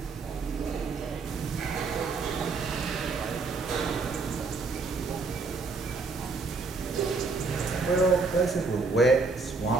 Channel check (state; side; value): quieter; left; 4.1 dB